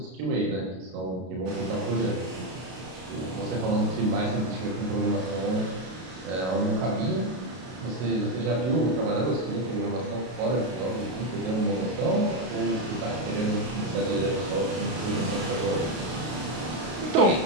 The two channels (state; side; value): late; left; 32 ms